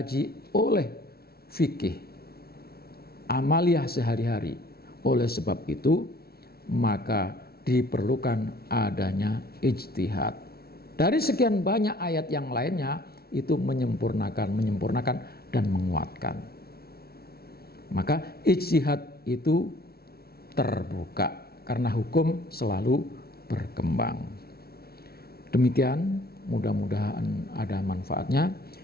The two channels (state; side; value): late; right; 0.45 ms